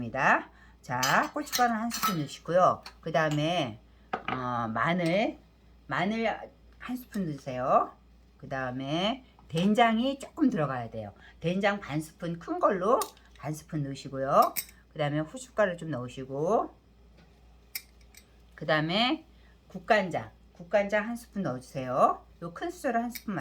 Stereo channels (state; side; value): identical; both; correlation 1.00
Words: 자, 고춧가루 한 스푼 넣으시고요. 그 다음에 마늘 한 스푼 넣으세요. 그 다음에 된장이 조금 들어가야 돼요. 된장 반 스푼 큰 걸로 반 스푼 넣으시고요. 그 다음에 후춧가루 좀 넣으시고, 그 다음에 국간장 한 스푼 넣어주세요. 요 큰 수저로 한 스푼